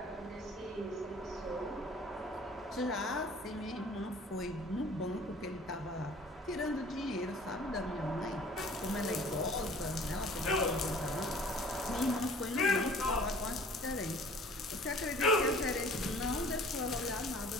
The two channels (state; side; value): normal; both; correlation 0.50